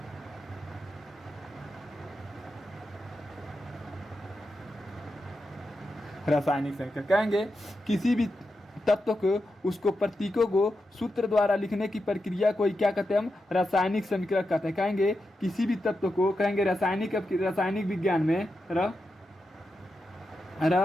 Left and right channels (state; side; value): normal; both; correlation 0.88